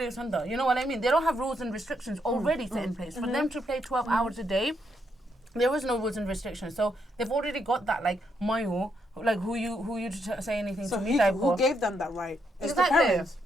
what I mean? They don't have rules and restrictions already set in place. For them to play 12 hours a day, there was no rules and restrictions. So they've already got that, like, mayo, like who you to say anything so to me type who gave them that right? It's exactly. the parents.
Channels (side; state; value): both; normal; correlation 0.78